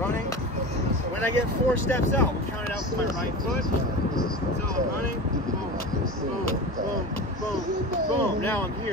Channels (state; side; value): normal; both; correlation 0.29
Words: When I get 4 steps out, we'll count it out with my right foot. So I'm running, boom, boom, boom, boom, boom. Now I'm